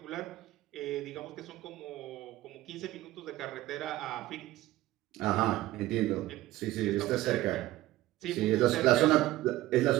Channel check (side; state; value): left; quieter; 16.4 dB